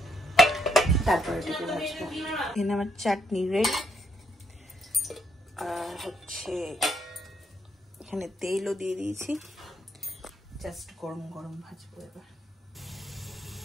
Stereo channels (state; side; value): normal; both; correlation 0.75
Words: তারপরে এটাকে ভাজবো। এখানে আমার চাটনি রেডি। আর হচ্ছে এখানে তেলও দিয়ে দিয়েছি, জাস্ট গরম গরম ভাজবো এবার।